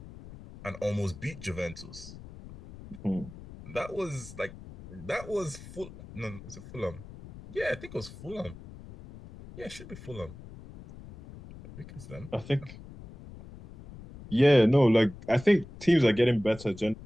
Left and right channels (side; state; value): left; noise; rumble, 16 dB below the sound